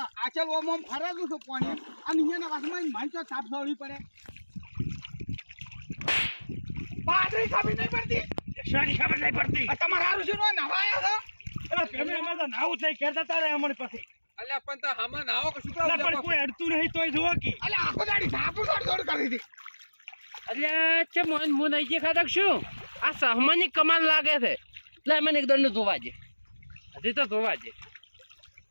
આચલ ઓમ ઓમ ફરેલું છું પાણી અને અહીંયાના વાસમાં મન તો થાપ છોડવી પડે બાદરી ખબર નહીં પડતી શાની ખબર નહીં પડતી આ તમારા હારું શું નો નવાયા છો અલા પેમે અમે તો નાવું થઈ કરતા તારે અમણ પછી અલ્યા પણ તો હમા નાવો કે શું અલા પણ કરો કોઈ અડતું નહીં તોય જોવો કે અલે આખો દાડી થાપુ છોડ છોડ કરી હતી એટલે છે મોન મુ નહીં જે ખાતક શું આ સહમાની કમાલ લાગે છે લે મને એક દંડ ધોવા દે હજી તો ધોવા દે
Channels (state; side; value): inverted; both; correlation -1.00